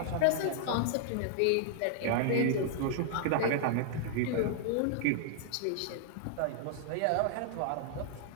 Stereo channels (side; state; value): both; different; correlation -0.01